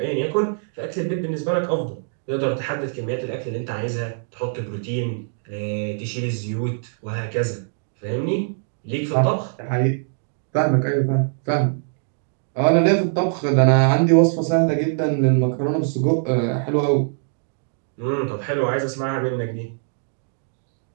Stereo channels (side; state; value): left; silent; digital silence